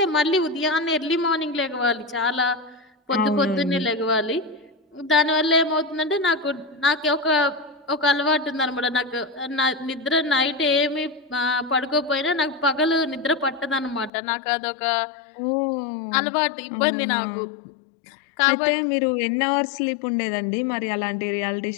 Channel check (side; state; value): right; drops out; at 14.1 s